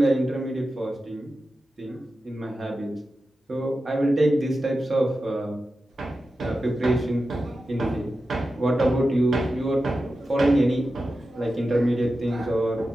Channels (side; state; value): both; normal; correlation 0.92